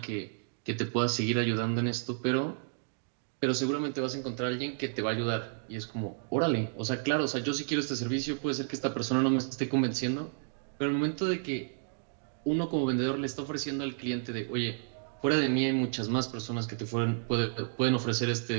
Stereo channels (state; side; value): silent; left; digital silence